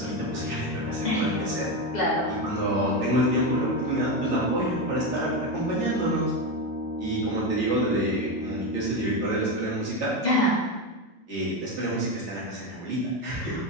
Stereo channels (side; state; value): both; normal; correlation 0.13